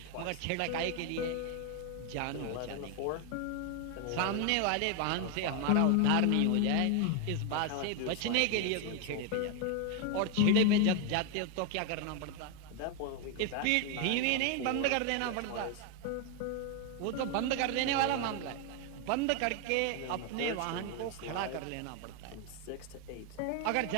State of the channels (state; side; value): different; both; correlation 0.01